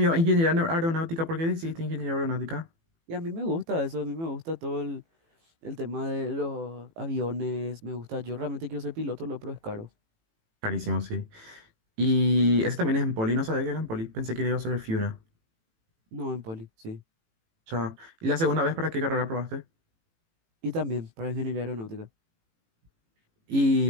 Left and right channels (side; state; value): left; late; 18 ms